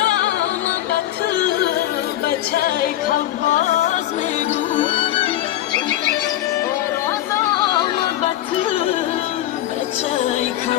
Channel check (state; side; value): quieter; right; 13.6 dB